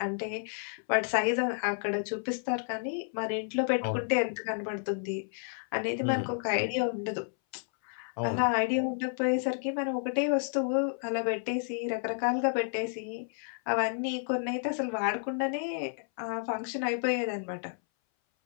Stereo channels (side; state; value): right; silent; 57 dB below the other